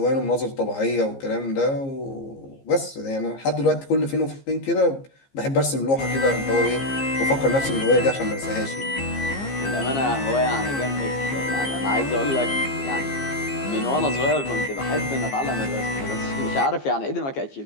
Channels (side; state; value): right; late; 15 ms